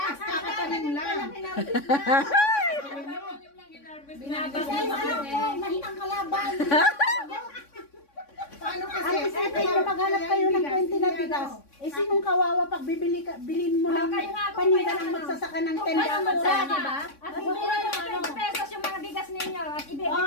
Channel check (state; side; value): late; right; 3.6 ms